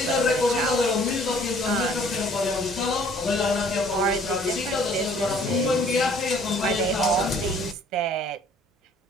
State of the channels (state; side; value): normal; both; correlation 0.57